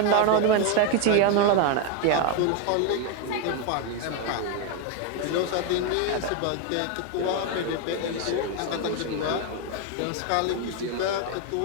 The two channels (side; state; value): both; different; correlation 0.01